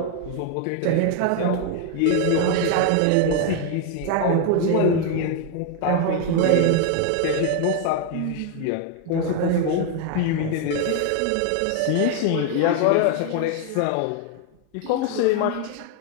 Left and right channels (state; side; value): different; both; correlation 0.00